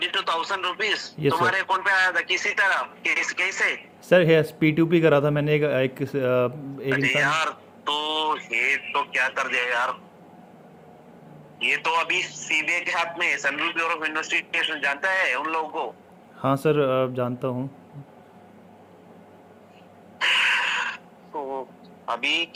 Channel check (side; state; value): both; identical; correlation 1.00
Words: रुपीज यस सर। तुम्हारे अकाउंट पे आया था? किसी तरह कैसे? सर यस, P2P करा था मैंने एक अरे इंसान। यार, तो ये तो क्या कर दिया यार। ये तो अभी सीबीआई के हाथ में है। सेंट्रल ब्यूरो ऑफ इन्वेस्टिगेशन जानता है उन लोगों को। हाँ सर, जानता हूँ। तो अभी